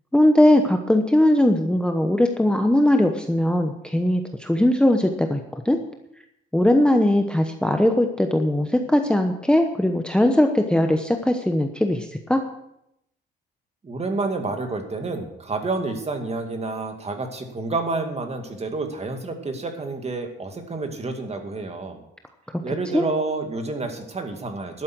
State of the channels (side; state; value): both; normal; correlation 0.87